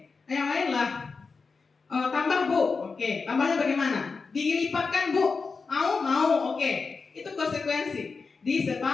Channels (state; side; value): quieter; right; 4.6 dB